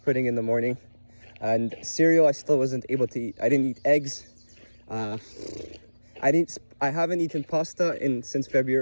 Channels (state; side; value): inverted; both; correlation -1.00